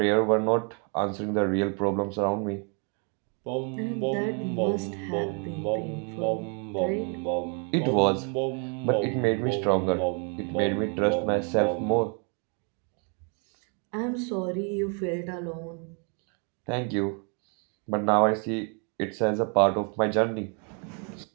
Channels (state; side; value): quieter; left; 37.8 dB